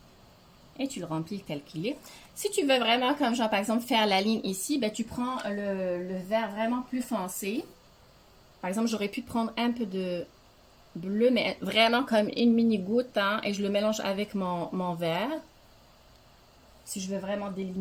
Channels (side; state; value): both; identical; correlation 1.00